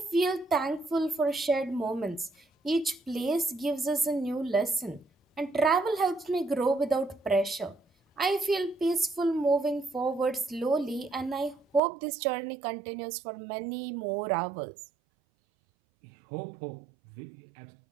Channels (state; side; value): drops out; left; at 11.8 s